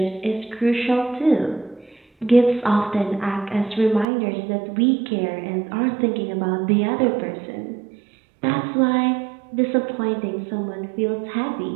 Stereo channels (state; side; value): drops out; left; at 4.0 s